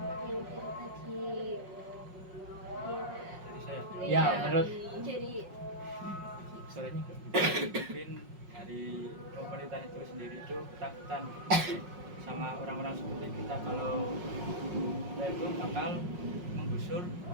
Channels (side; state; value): left; late; 5.5 ms